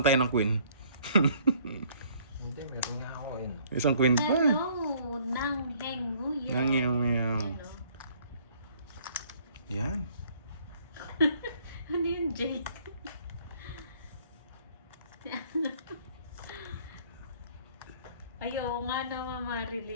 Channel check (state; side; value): inverted; both; correlation -0.60